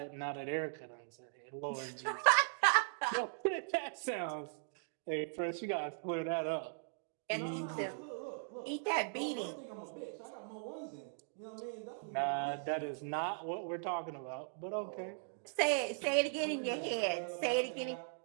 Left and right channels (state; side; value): silent; left; digital silence